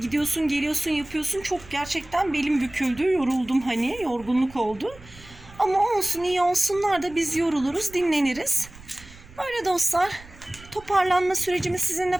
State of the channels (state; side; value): noise; right; rumble, 20 dB below the sound